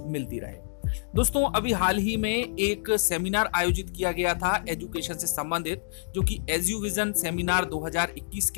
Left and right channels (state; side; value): silent; right; digital silence